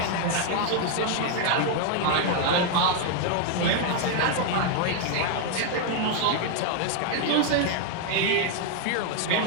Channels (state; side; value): different; both; correlation 0.00